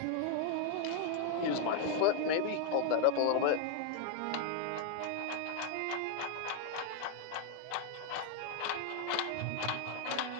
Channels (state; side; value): different; both; correlation 0.00